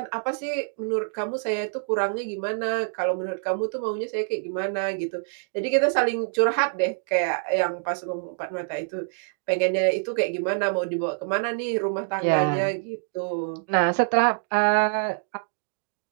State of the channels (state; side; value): silent; left; digital silence